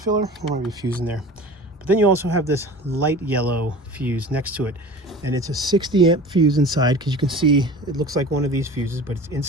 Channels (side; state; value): both; normal; correlation 0.39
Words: There might be a fuse in there. But then you also have this light yellow fuse next to it. And it's a 60 amp fuse inside, because you can see it looks like one of these fuses, but it's